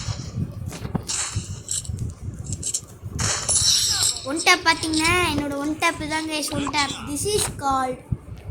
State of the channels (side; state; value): both; identical; correlation 1.00